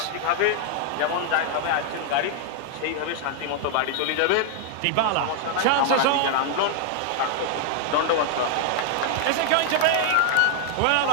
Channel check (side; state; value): both; different; correlation 0.00